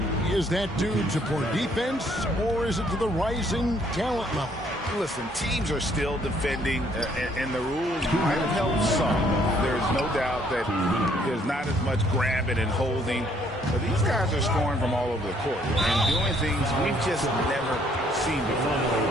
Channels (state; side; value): normal; both; correlation 0.65